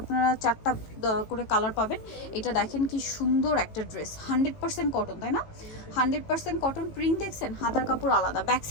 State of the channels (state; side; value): late; right; 18 ms